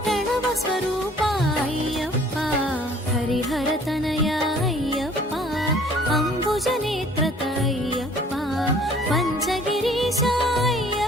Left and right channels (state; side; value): normal; both; correlation 0.54